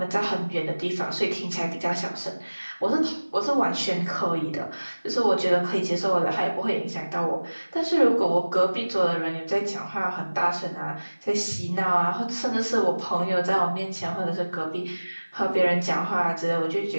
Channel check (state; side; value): inverted; both; correlation -1.00